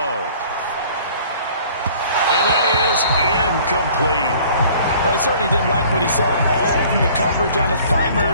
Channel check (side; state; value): both; inverted; correlation -0.51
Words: And that is incomplete. Well, he certainly didn't like what he saw all from the coverage on his